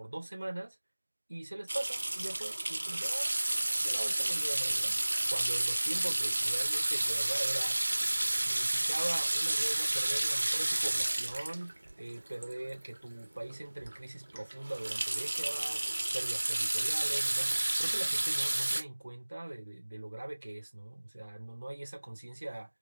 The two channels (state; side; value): inverted; both; correlation -1.00